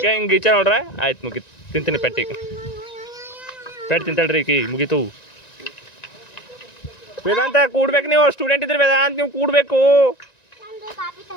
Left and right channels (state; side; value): late; right; 1.9 ms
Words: ಹಿಂಗೆ ಈಚ ನೋಡ್ರ ಆಯ್ತು ಮುಗೀತು ತಿಂತೀನಿ ಪೆಟ್ಟಿಗೆ ಪೆಟ್ಟು ತಿಂತಾಳ್ರಿ ಈಕಿ ಮುಗೀತು ವೇದಾಂತ ಕೂಡ್ಬೇಕು ನೀವು ಸ್ಟೂಡೆಂಟ್ ಇದ್ರಿ ವೇದಾಂತ ನೀವು ಕೂಡಬೇಕು